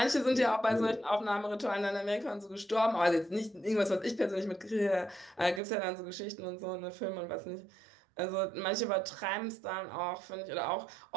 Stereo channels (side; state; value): left; drops out; at 5.6 s